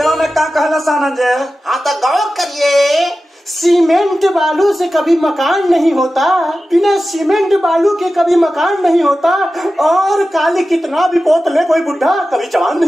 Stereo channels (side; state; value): both; normal; correlation 0.94